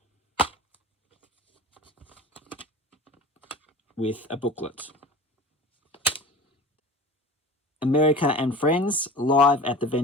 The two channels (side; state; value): both; normal; correlation 0.37